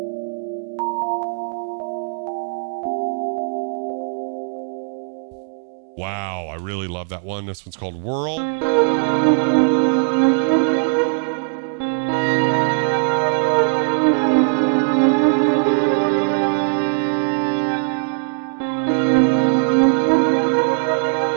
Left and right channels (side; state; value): left; silent; digital silence